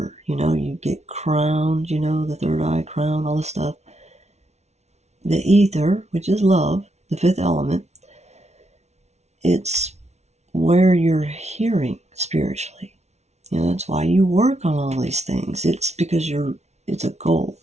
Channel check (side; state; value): left; late; 0.32 ms